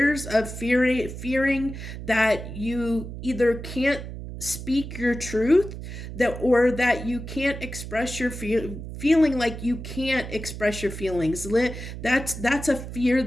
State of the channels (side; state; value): right; noise; hum, 9 dB below the sound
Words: of fearing that you either can't speak your truth, that or that you can't express your feeling, like you can't express your feelings. That's a fear